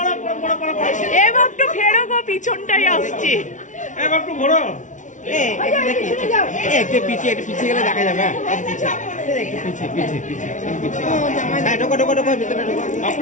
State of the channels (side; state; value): right; late; 0.37 ms